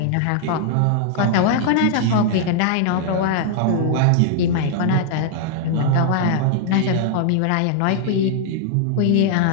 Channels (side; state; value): both; different; correlation -0.01